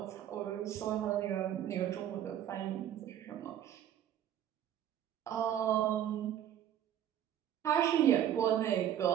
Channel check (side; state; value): left; quieter; 10.7 dB